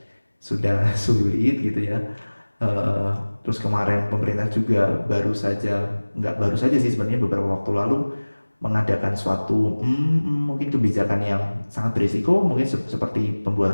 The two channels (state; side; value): inverted; both; correlation -1.00